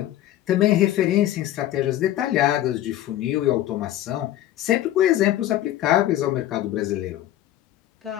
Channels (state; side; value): quieter; right; 13.3 dB